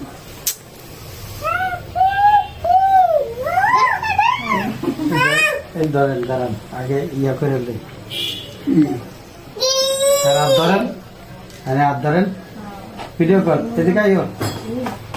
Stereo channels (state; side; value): identical; both; correlation 1.00